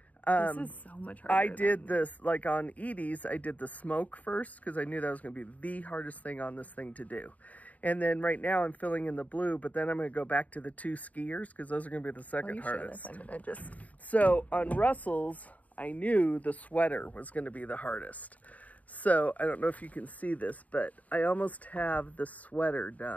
this is so much harder. I did this, like on Edie's, I did the smoke first because I knew that was going to be the hardest thing on this thing to do. And then right now I'm filling in the blue, but then I'm going to go back to the 2 skiers because those are going to be the second hardest. I'm gonna just... So on Russell's, I knew the sweater was going to be the hardest. So I don't know if you can see this, but I almost have the sweater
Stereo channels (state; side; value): late; right; 0.072 ms